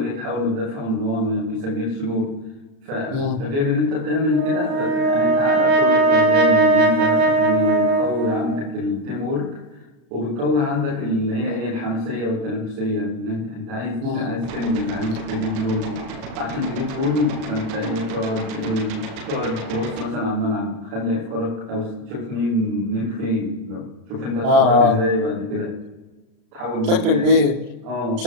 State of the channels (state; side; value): late; left; 36 ms